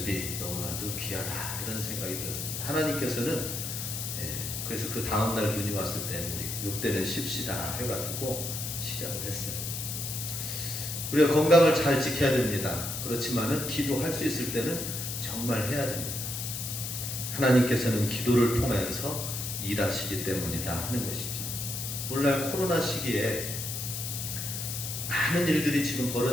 너무나도 귀하다, 이런 생각이 들었습니다. 하나님께서는 그래서 그 다음날 눈이 왔을 때 우리 요때는 쉽시다 해가지고 시작을 했어요. 우리가 건강을 잘 지켜야 됩니다. 그렇지만은 기도할 수 있을 때는 정말 해야 됩니다. 하나님께서는 기도를 통해서 일하시기 때문이다 하는 것이죠. 오늘날 코로나 시기에 많은 일들이 지금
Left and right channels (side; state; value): left; noise; hiss, 4 dB below the sound